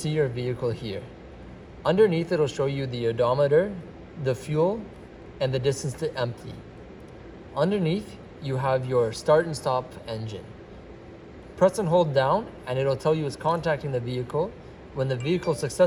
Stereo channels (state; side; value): identical; both; correlation 1.00